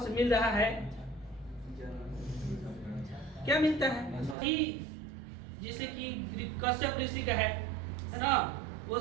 में मिल रहा है, क्या मिलता है? जैसे कि कश्यप ऋषि का है ना,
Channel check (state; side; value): drops out; left; at 4.4 s